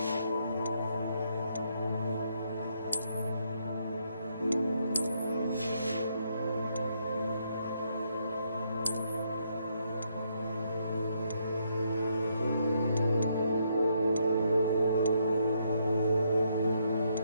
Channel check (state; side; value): inverted; both; correlation -0.74